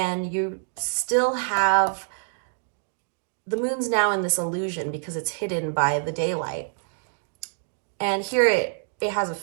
you still have, the moon's now in this illusion because it's hidden by the daylight. And here it has a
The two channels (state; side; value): silent; left; digital silence